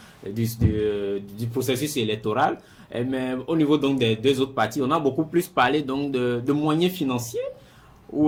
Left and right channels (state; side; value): identical; both; correlation 1.00